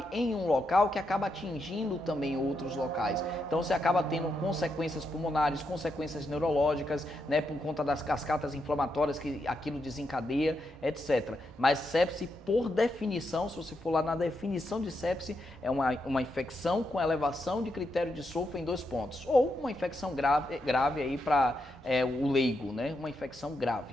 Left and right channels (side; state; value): both; normal; correlation 0.83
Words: em um local que acaba atingindo também outros locais. Então você acaba tendo consequências pulmonares, consequências neurológicas, né, por conta das cascatas inflamatórias que aquilo desencadeia, etc. Mas sepse, por definição, se você for lá na definição de sepse, é uma infecção com elevação de critério de Solfa em 2 pontos. Ou uma infecção grave aí para o leigo, né? Uma infecção